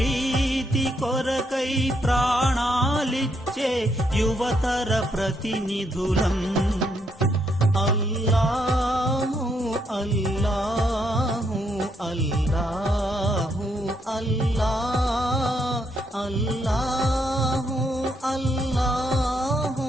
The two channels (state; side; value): normal; both; correlation 0.76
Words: కొరకై ప్రాణాలిచ్చే యువతర ప్రతినిధులం. అల్లాహు అల్లాహు అల్లాహు అల్లాహ్ అల్లాహు అల్లాహు